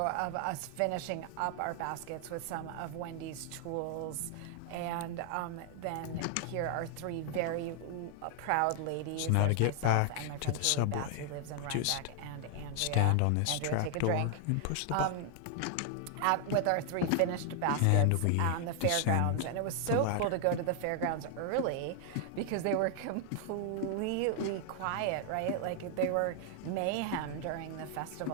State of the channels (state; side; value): different; both; correlation 0.00